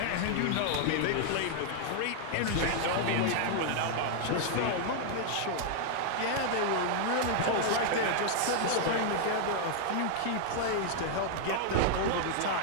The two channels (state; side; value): different; both; correlation 0.00